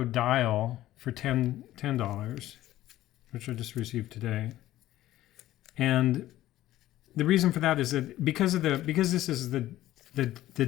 dial for $10, which I just received today. And the reason for that is that because this is the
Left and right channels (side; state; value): right; quieter; 14.6 dB